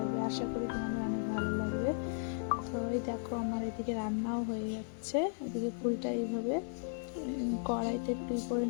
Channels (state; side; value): silent; right; digital silence